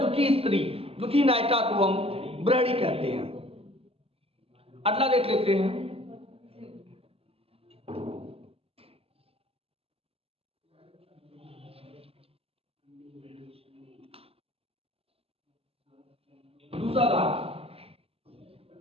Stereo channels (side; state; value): left; late; 0.28 ms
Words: स्त्री, दुखी नायिका को हम बिरहड़ी कहते हैं। अगला देख लेते हैं। दूसरा भाग,